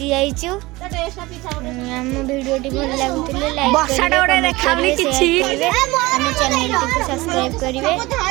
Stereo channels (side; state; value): left; quieter; 20.8 dB